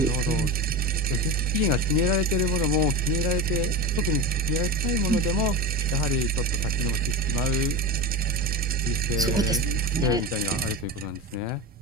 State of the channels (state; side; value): normal; both; correlation 0.23